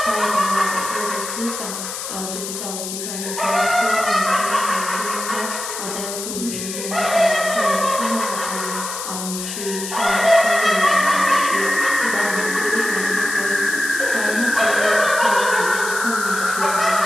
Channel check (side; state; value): left; noise; hiss, 6 dB below the sound